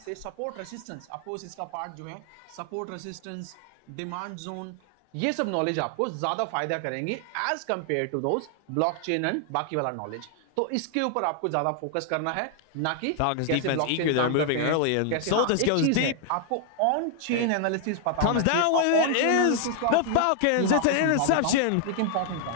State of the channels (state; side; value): different; both; correlation 0.00